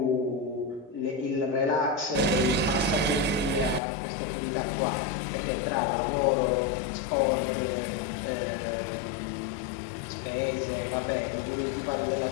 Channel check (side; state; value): right; drops out; at 3.8 s